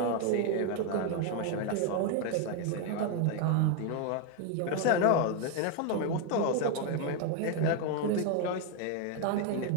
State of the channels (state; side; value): different; both; correlation 0.01